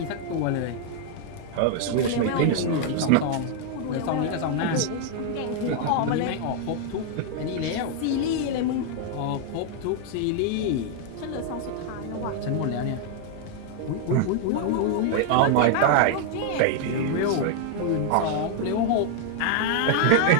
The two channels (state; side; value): different; both; correlation 0.00